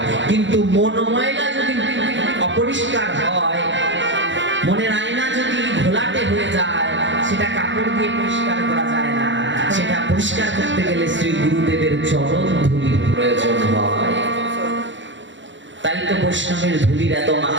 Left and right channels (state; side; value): late; left; 0.54 ms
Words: কিন্তু মন ময়লা যদি অপরিষ্কার হয়, মনের আয়না যদি ঘোলাটে হয়ে যায়, সেটা কাপড় দিয়ে পরিষ্কার করা যায় না। সেটা পরিষ্কার করতে গেলে শ্রী গুরুদেবের চরণ ধুলির প্রয়োজন হয়। তাই তো বৈষ্ণবের ধুলির এত